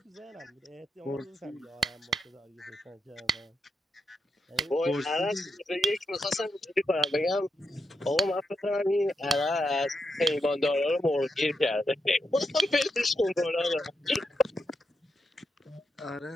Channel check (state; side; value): normal; both; correlation 0.84